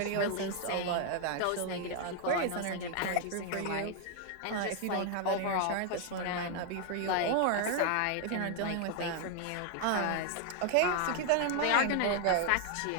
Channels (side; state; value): both; different; correlation 0.00